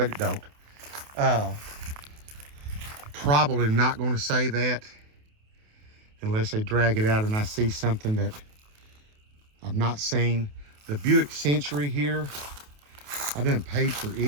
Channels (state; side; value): late; left; 28 ms